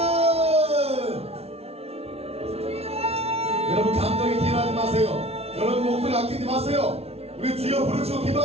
여러분 감정에 기인하지 마세요. 여러분 목소리 아끼지 마세요. 우리 주여 부르시고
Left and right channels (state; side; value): late; left; 0.30 ms